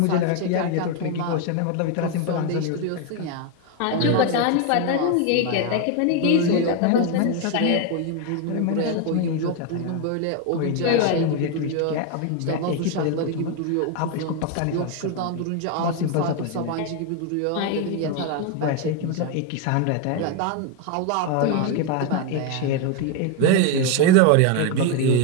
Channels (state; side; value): different; both; correlation 0.01